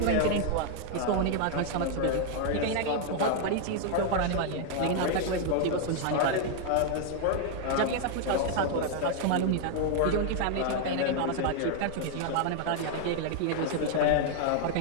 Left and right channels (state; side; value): different; both; correlation 0.00